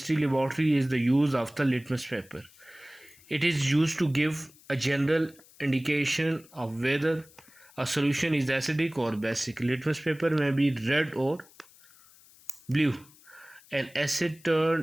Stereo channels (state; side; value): noise; left; hiss, 26 dB below the sound